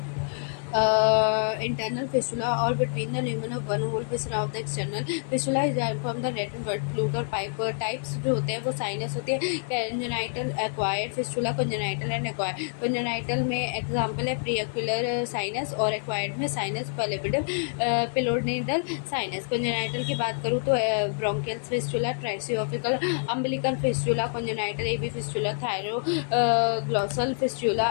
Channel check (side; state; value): right; silent; digital silence